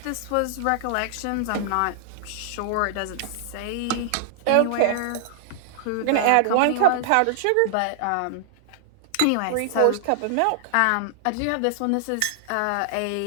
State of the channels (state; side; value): different; both; correlation -0.01